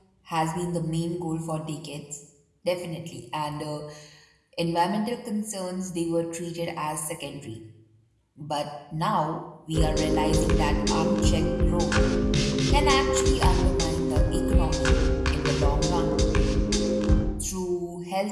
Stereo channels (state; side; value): identical; both; correlation 1.00